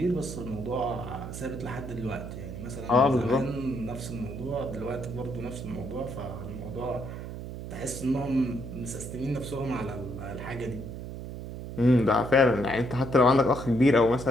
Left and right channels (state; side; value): noise; right; hum, 9 dB below the sound